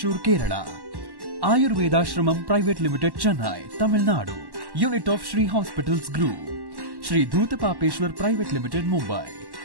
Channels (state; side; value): late; left; 1.1 ms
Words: Kerala. Ayurveda Shramam Private Limited, Chennai, Tamil Nadu. Unit of Shri Hospitals Group. Shri Dhutapapeshwar Private Limited, Mumbai.